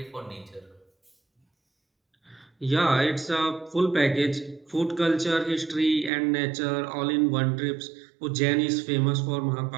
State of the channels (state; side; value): drops out; left; at 6.1 s